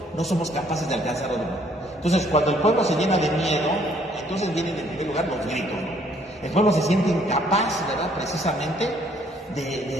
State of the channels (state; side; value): normal; both; correlation 0.63